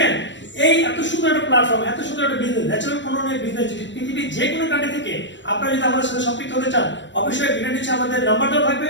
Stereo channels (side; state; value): right; late; 0.53 ms